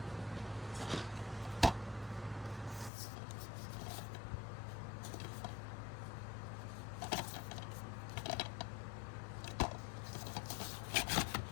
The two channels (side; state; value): right; drops out; at 2.9 s